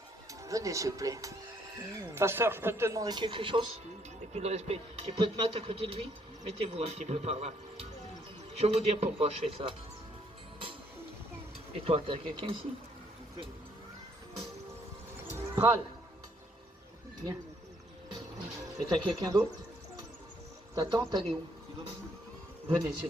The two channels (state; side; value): normal; both; correlation 0.68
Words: Venez, s'il vous plaît. Pasteur, je peux te demander quelque chose? Et puis le respect. Tu peux te mettre à côté de lui? Mettez-vous un petit peu par là. Je vais vous dire pourquoi je fais ça. Et toi, t'as quelqu'un ici? Pral. Viens. Et t'as quelqu'un d'autre? Ta tante, elle est où? Venez, s'il